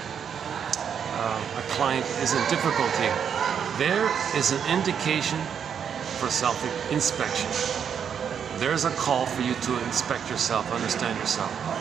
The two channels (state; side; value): quieter; left; 7.7 dB